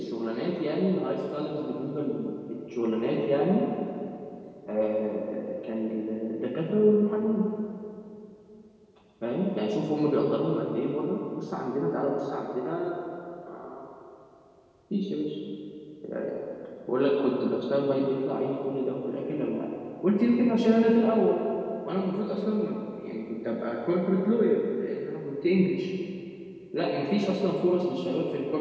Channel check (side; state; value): both; identical; correlation 1.00